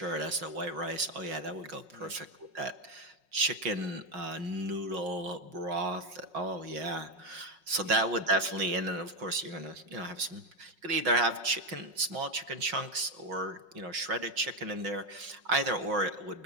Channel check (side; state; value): left; late; 5.5 ms